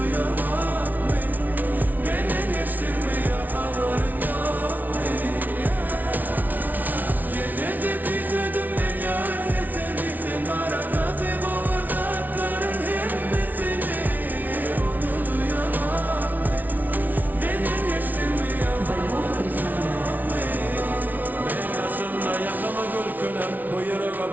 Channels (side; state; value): left; late; 0.080 ms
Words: ben. Benden geçtin mi ya haberin yok mu? Yine de küsüdüm ben ya sesini. Sen arada kaybolmaz atların hemmesini. Onu duyamam ben. Benden geçtin mi ya haberin yok mu? Ben karşımda yakama gülkülüm. Bu yüreğe